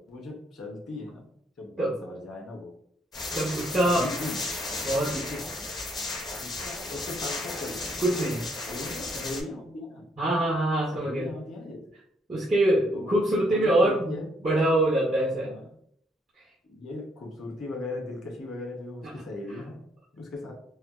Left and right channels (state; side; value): normal; both; correlation 0.70